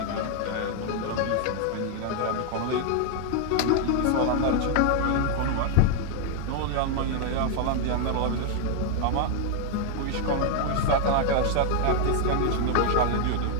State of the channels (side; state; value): both; different; correlation 0.00